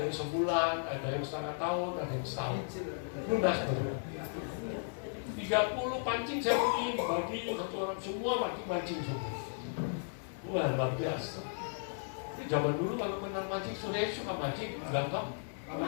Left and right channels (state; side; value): silent; right; digital silence